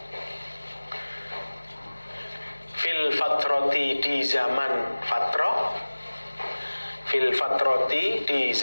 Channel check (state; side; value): inverted; both; correlation -1.00